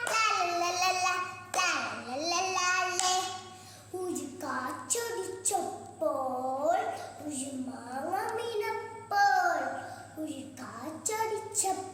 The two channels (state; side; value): identical; both; correlation 1.00